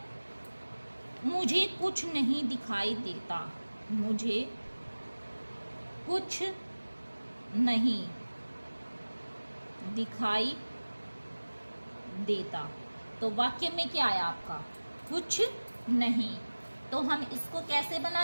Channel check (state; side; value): inverted; both; correlation -1.00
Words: मुझे कुछ नहीं दिखाई देता। मुझे कुछ नहीं दिखाई देता। तो वाक्य में क्या आया आपका? कुछ नहीं। तो हम इसको कैसे